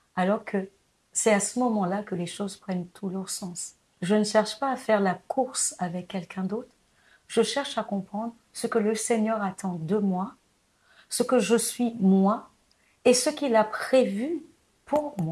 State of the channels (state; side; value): identical; both; correlation 1.00